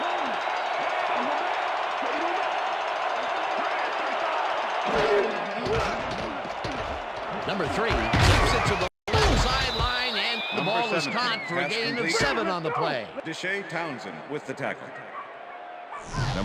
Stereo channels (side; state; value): both; identical; correlation 1.00